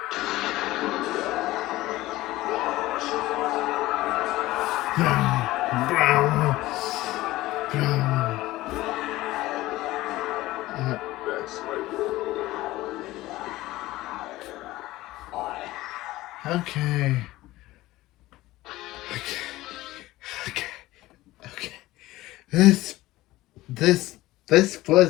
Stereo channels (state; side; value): quieter; right; 17.6 dB